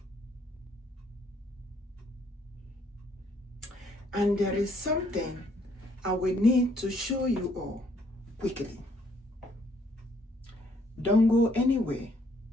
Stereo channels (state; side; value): normal; both; correlation 0.67